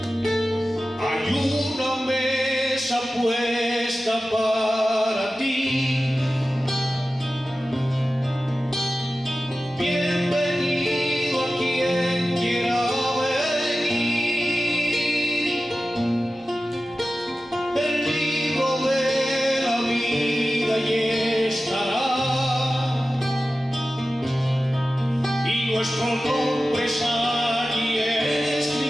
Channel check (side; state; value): both; normal; correlation 0.94